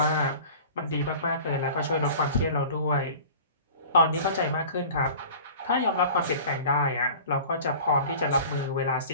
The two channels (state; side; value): inverted; both; correlation -0.41